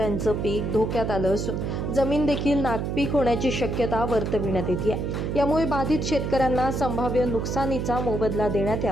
पीक धोक्यात आलं असून जमीन देखील नापीक होण्याची शक्यता वर्तविण्यात येते. यामुळे बाधित शेतकऱ्यांना संभाव्य नुकसानीचा मोबदला देण्यात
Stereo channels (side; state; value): right; noise; hum, 2 dB below the sound